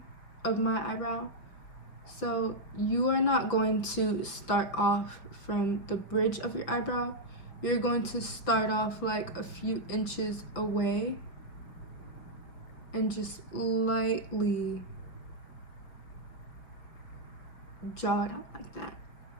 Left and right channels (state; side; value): late; right; 5.9 ms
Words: of my eyebrow. So you are not going to start off from the bridge of your eyebrow. You're going to start off like a few inches away and just lightly draw it out like that.